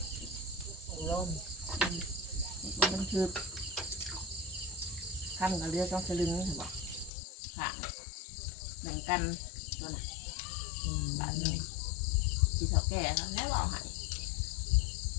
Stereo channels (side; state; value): right; drops out; at 7.1 s